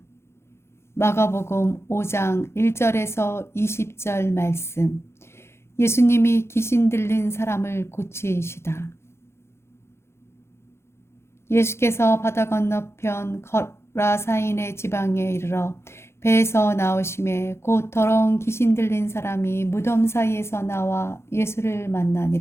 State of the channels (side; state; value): right; late; 0.12 ms